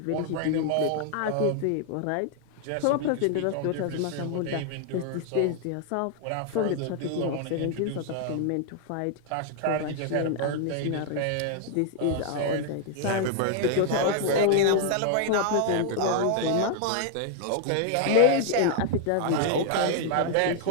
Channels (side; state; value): both; different; correlation 0.00